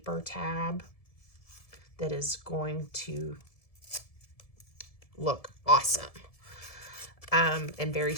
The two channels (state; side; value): late; right; 1.7 ms